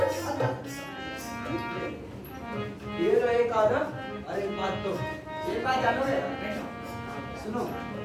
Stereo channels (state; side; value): identical; both; correlation 1.00